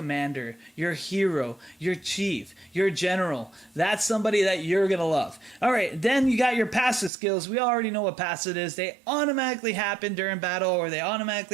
your hero, your chief, your general. That's somebody that you're going to love. All right, then you got your passive skills. We already know what passive is. They automatically happen during battle, or they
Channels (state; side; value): drops out; left; at 7.1 s